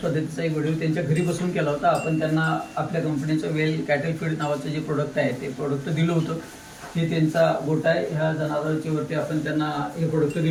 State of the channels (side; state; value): both; identical; correlation 1.00